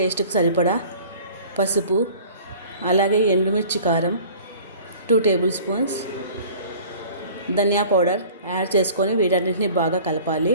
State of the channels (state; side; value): inverted; both; correlation -0.46